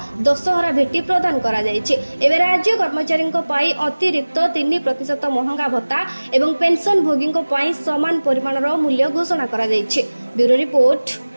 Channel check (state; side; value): inverted; both; correlation -1.00